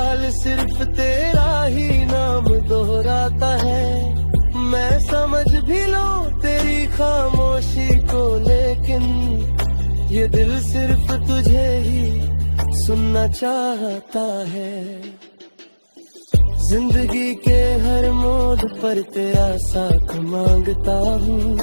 सिर्फ तेरा ही नाम दोहराता है। मैं समझ भी लूं तेरी खामोशी को, लेकिन ये दिल सिर्फ तुझे ही सुनना चाहता है। जिंदगी के हर मोड़ पर तेरा साथ मांगता हूँ,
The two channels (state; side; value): inverted; both; correlation -1.00